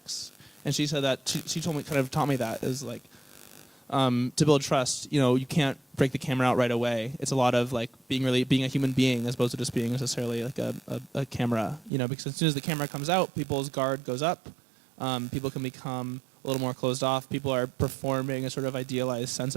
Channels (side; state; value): left; drops out; at 11.9 s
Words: and she said that she taught me that is like, to build trust, you can't break the camera out right away. It's a lot of like being a human being as opposed to just being necessarily like a camera, because as soon as the camera comes out, people's guard goes up. People can become a little more closed off. People are performing a sort of idealized sense